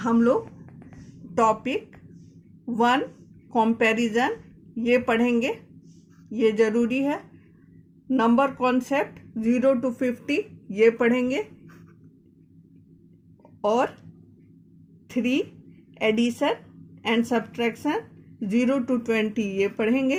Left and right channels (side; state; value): both; identical; correlation 1.00